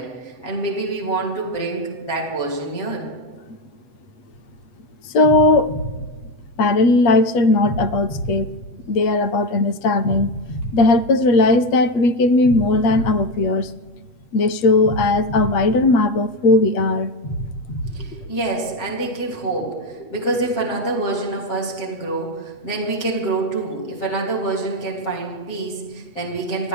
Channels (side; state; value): right; late; 8.4 ms